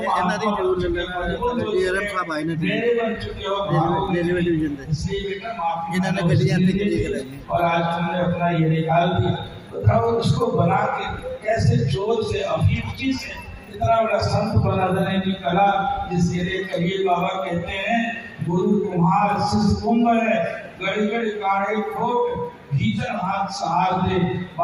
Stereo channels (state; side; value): identical; both; correlation 1.00